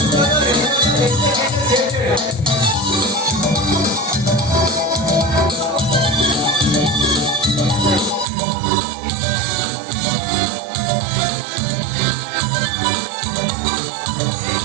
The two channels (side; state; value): left; drops out; at 8.2 s